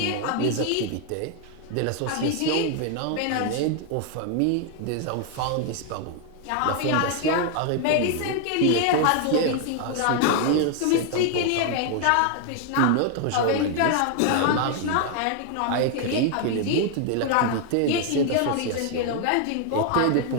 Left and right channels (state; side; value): different; both; correlation 0.00